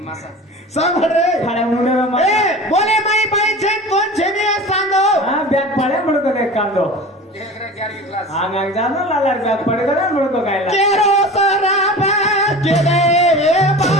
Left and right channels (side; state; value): both; normal; correlation 0.36